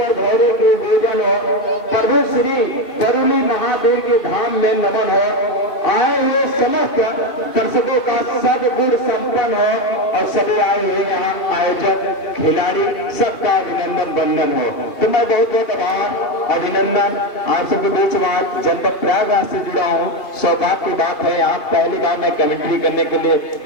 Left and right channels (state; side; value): late; right; 2.5 ms